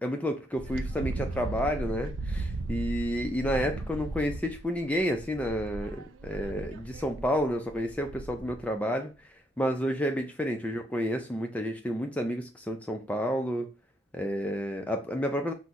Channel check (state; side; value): normal; both; correlation 0.75